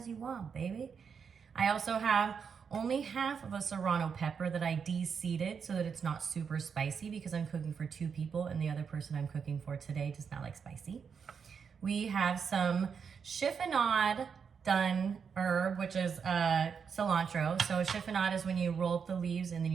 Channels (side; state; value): left; quieter; 6.4 dB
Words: you want, baby. I also have only half of a serrano pepper that I de-seeded so that it's not super spicy because I'm cooking for two people and the other person I'm cooking for today does not like spicy. We have some chiffonade done herb, which is cilantro. So chiffonade is when you roll up the leaves and then